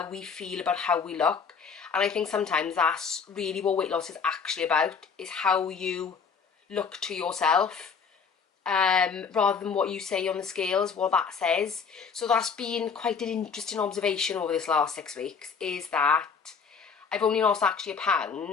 we feel about how we look. And I think sometimes that's really what weight loss is actually about, is how you look to yourself. rather than what you say on the scales, what that says. So that's been quite an interesting observation over this last 6 weeks, is that I've only lost actually a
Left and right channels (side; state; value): right; quieter; 5.9 dB